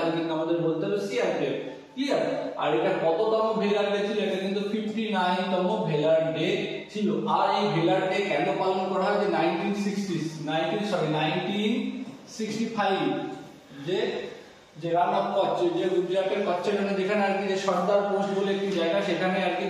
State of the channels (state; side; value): identical; both; correlation 1.00